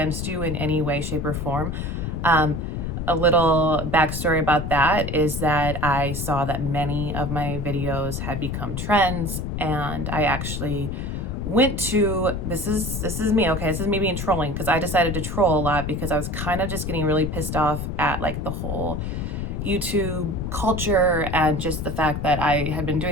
you in any way, shape, or form. A little backstory about that is that I saw that many of my videos had become trends, and I actually went to, this is me, okay, this is me being trolling, because I decided to troll a lot because I was kind of just getting really pissed off at like the whole YouTube culture and just the fact that I had been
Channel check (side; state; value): left; noise; rumble, 4 dB below the sound